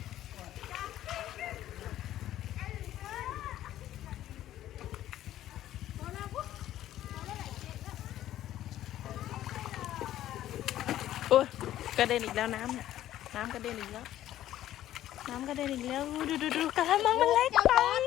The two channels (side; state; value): right; quieter; 13.0 dB